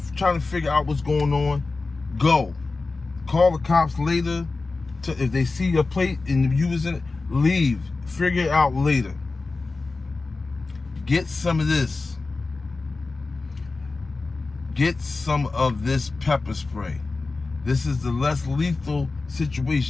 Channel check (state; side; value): quieter; right; 3.7 dB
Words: try to figure out what's going on. Go. Call the cops later. If they see your plate and you was in it, leave. Figure it out later. Get some of this. Get some of this pepper spray. This is the less lethal